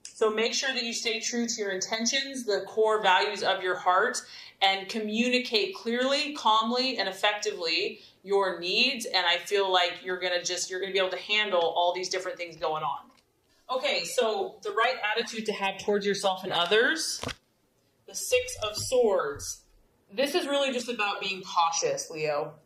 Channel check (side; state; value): both; identical; correlation 1.00